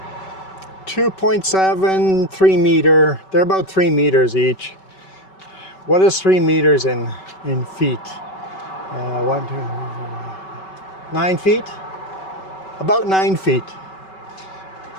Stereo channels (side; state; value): right; late; 5.3 ms